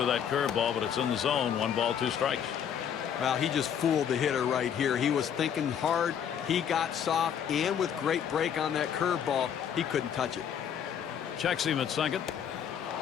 that curveball, but it's in the zone. 1 ball, 2 strikes. Well, he just fooled the hitter right here. He was thinking hard. He got soft, and with great break on that curveball, he couldn't touch it. Checks him at second.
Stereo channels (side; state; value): right; quieter; 8.5 dB